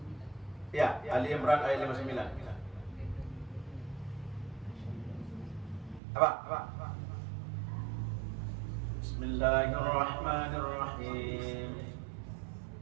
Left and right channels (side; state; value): left; drops out; at 6.0 s